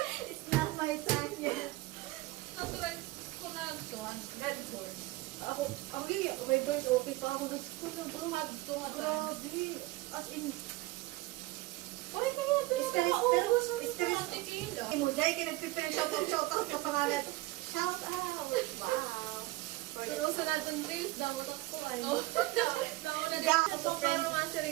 It's not my time yet. Natry ko na ito. Red horn. Ako, okay girl, okay pa ako doon. Tuhad. Grabe. As in, Pare kaya ito yung Stress, mga pero ubos stress. ng tequila. mo, dahil ka nagpipirang shout out sa pangalan. Shout out! Wow! Pero sa natin days, daw ako ay. Daw na Ga- dito. Pero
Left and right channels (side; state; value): left; quieter; 19.4 dB